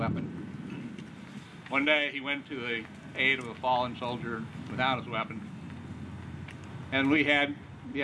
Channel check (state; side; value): identical; both; correlation 1.00